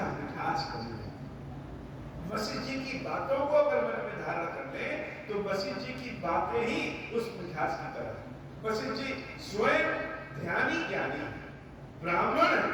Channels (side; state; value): both; identical; correlation 1.00